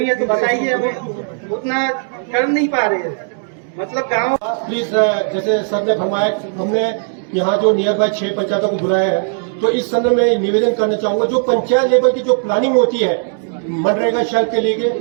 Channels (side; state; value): left; silent; digital silence